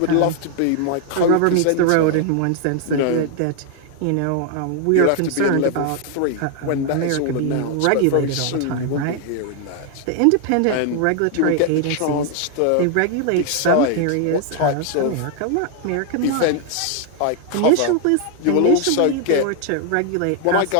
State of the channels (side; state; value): both; different; correlation 0.00